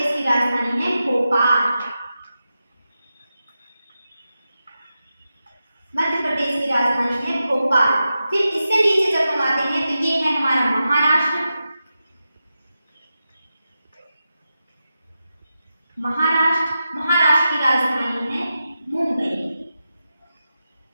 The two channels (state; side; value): inverted; both; correlation -0.91